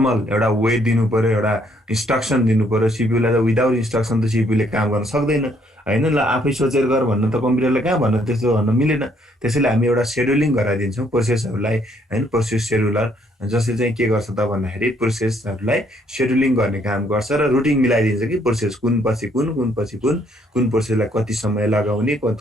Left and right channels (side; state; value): both; normal; correlation 0.68